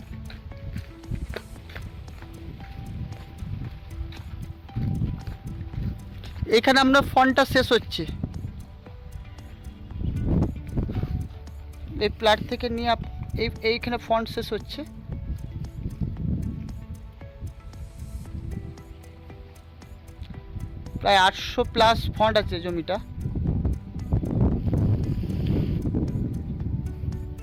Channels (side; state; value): both; identical; correlation 1.00